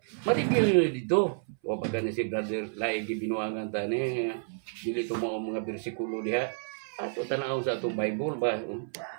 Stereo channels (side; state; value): left; silent; 57 dB below the other